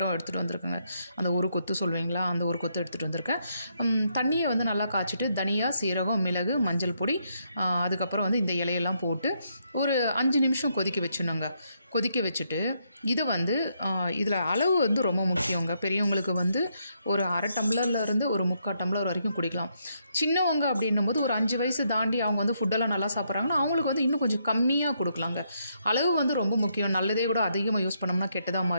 எடுத்துகிட்டு வந்திருக்கேங்க. அந்த ஒரு கொத்து சொல்லுவீங்களா, அந்த ஒரு கொத்து எடுத்துகிட்டு வந்திருக்கேன். தண்ணியை வந்து நல்லா காய்ச்சிட்டு தனியா, சீரகம், மிளகு, மஞ்சள் பொடி, அதுக்கப்புறம் வந்து இந்த இலையெல்லாம் போட்டு ஒரு 5 நிமிஷம் கொதிக்க வச்சுணுங்க. கொதிக்க வச்சுட்டு இது வந்து இதில் அளவு வந்து ரொம்ப முக்கியங்க. பெரியவங்களுக்கு வந்து ஒரு அரை டம்ளர்லேருந்து ஒரு 3/4 டம்ளர் வரைக்கும் குடிக்கலாம். சின்னவங்க அப்படின்னும் போது ஒரு 5 வயசு தாண்டி அவங்க வந்து ஃபுட்டெல்லாம் நல்லா சாப்பிட்றாங்கன்னா அவங்களுக்கு வந்து இன்னும் கொஞ்சம் கம்மியாக கொடுக்கலாங்க. அளவு வந்து ரொம்ப முக்கியம். நல்லதே கூட அதிகமாக யூஸ் பண்ணோம்னா கெட்டதாக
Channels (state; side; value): inverted; both; correlation -0.76